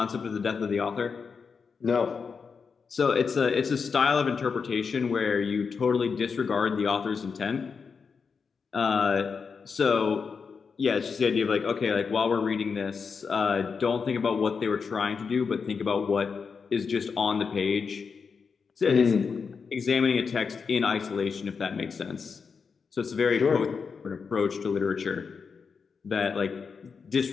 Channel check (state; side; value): quieter; right; 5.5 dB